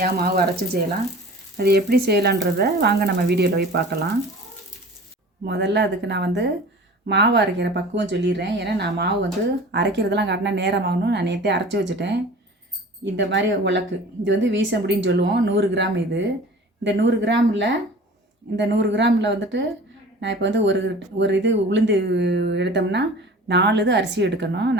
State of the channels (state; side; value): normal; both; correlation 0.42